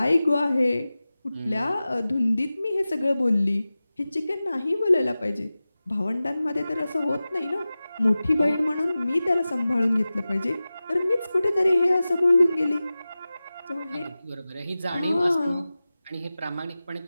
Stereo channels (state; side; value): inverted; both; correlation -0.96